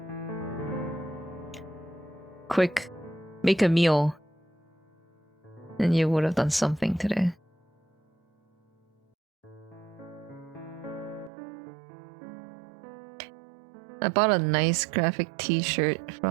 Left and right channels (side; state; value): left; drops out; at 11.3 s